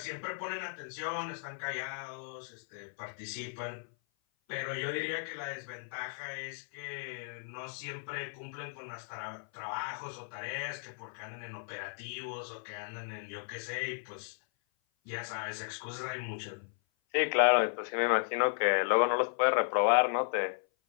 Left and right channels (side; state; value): right; silent; 54 dB below the other